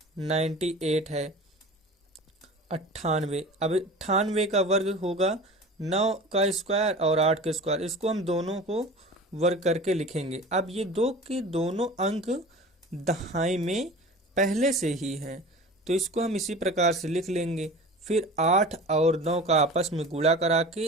98 है 98। अब 98 का वर्ग होगा 9 का स्क्वायर और 8 का स्क्वायर। इसको हम दोनों को वर्ग करके लिखेंगे। अब ये दो के दोनों अंक दहाई में पहले से ही हैं तो इसको हम इसी प्रकार से लिख लेंगे। फिर 8 और 9 का आपस में गुणा करा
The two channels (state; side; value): normal; both; correlation 0.37